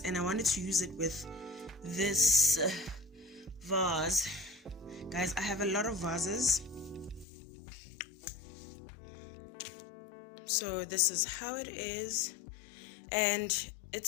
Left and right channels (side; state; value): right; drops out; at 7.2 s